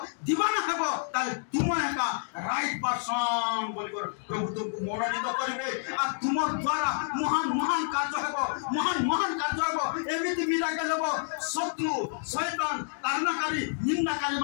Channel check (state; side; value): silent; right; digital silence